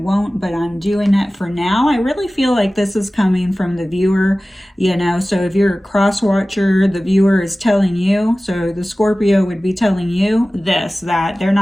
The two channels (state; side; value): normal; both; correlation 0.97